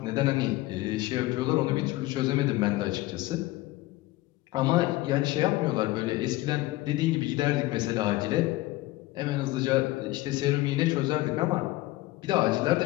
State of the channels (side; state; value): right; quieter; 18.4 dB